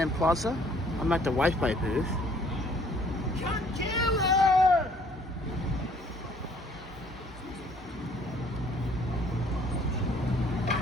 Plaza. I'm at the Wi-Fi booth.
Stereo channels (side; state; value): both; normal; correlation 0.59